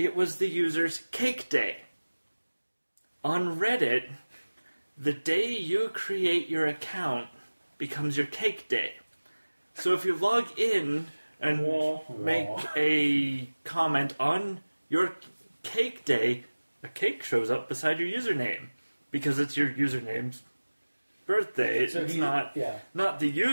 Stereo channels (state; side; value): inverted; both; correlation -1.00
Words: was the user's cake day. On Reddit, the day you create your account becomes your cake day. So if you log in and make a comment on your cake day, a cake shows up beside your username because it's your username's birthday. So it's not the